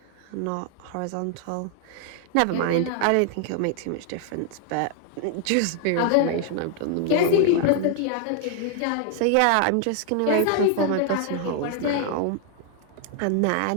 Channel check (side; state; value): both; different; correlation 0.00